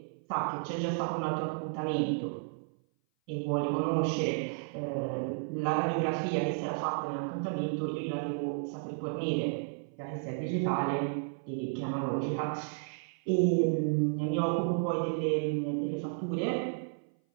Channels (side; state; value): left; silent; 56 dB below the other